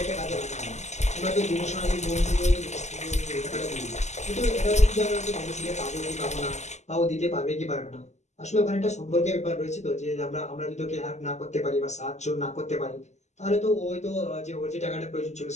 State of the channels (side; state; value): right; late; 0.33 ms